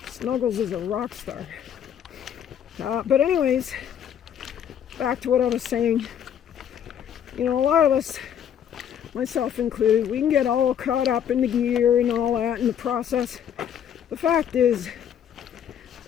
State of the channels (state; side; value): quieter; right; 9.0 dB